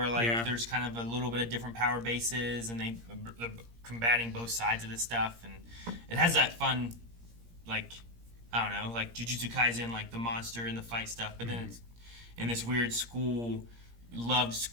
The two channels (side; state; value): left; late; 17 ms